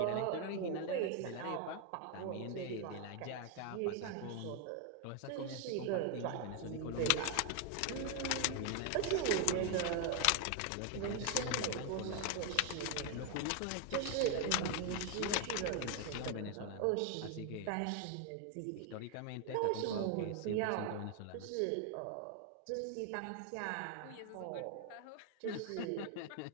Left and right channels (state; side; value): different; both; correlation 0.01